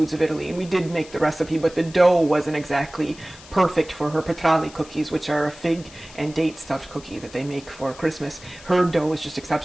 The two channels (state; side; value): noise; left; hiss, 20 dB below the sound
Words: of Italy, and we did make the recipe, but the dough wasn't exactly perfect for her petrali cookies, which are a fig and date stuffed cookie that they make for Christmas. Her dough was just